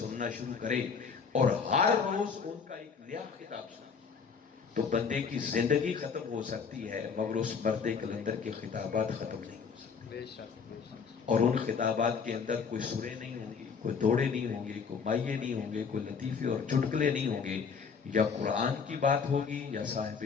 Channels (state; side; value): quieter; right; 5.9 dB